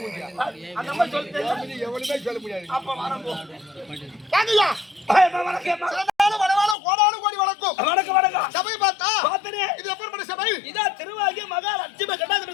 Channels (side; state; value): right; drops out; at 6.8 s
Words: எவனுமே சொல்ல முடியாது. அப்ப வடவானம் கோடானு கோடி வணக்கம். சபை பார்த்தா இது எப்பேற்பட்ட சபை? இதான் திருவாகிய மகாலட்சுமி